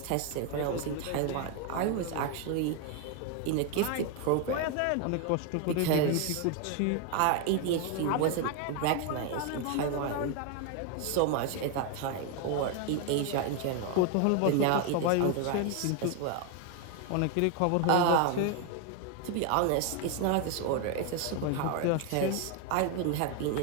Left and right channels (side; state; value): both; different; correlation 0.01